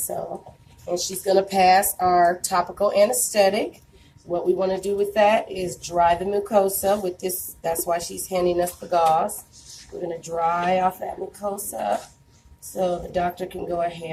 and she's going to pass our topical anesthetic. What we want to do with that is dry the mucosa with this. That's why she's handing us the gauze. We're going to dry off that mucosa so the doctor can go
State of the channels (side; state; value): both; identical; correlation 1.00